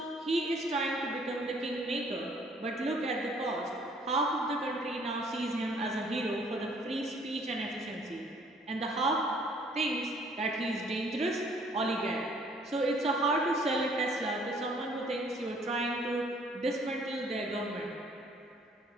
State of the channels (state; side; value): normal; both; correlation 0.60